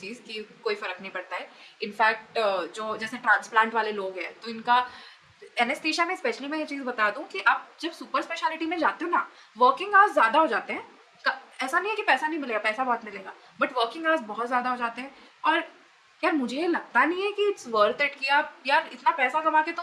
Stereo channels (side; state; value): both; identical; correlation 1.00